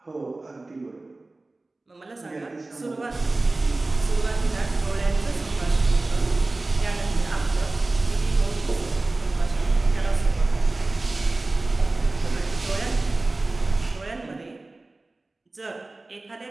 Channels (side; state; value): left; quieter; 3.1 dB